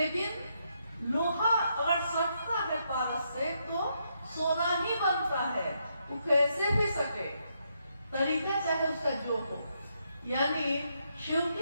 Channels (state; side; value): inverted; both; correlation -0.78